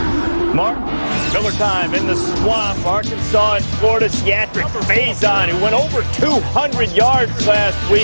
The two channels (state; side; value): inverted; both; correlation -1.00